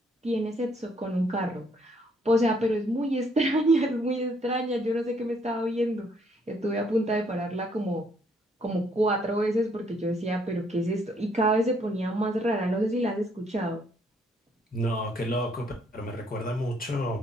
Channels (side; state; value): both; normal; correlation 0.68